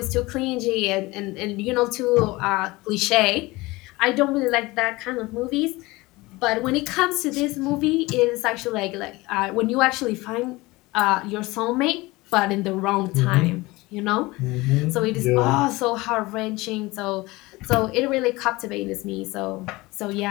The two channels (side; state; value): right; quieter; 21.5 dB